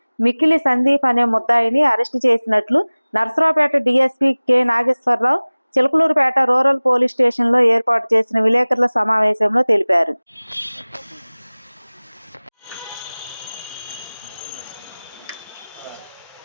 మిక్కిలి సందీప్ అనే ముద్దాయిని అరెస్టు చేసినట్లు Narasaraopet DSP K Nageswararao Chilakaluripet rural police స్టేషన్లో ఏర్పాటు చేసిన విలేకరుల సమావేశంలో తెలిపారు.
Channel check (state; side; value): inverted; both; correlation -1.00